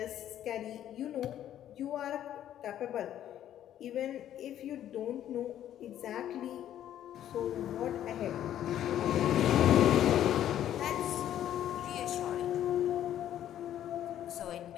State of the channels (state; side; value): quieter; right; 11.3 dB